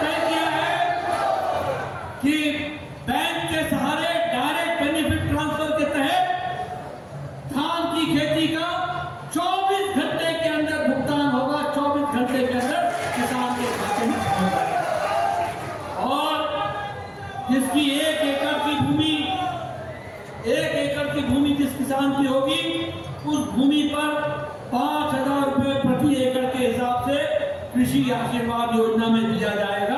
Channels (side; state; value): both; identical; correlation 1.00